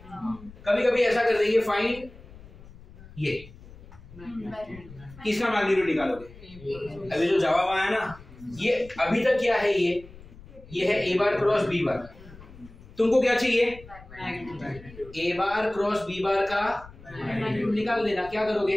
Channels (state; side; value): noise; left; rumble, 20 dB below the sound